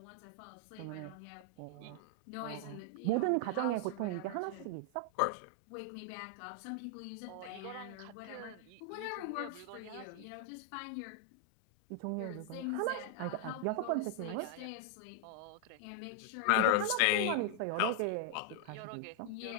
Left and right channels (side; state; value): both; different; correlation 0.00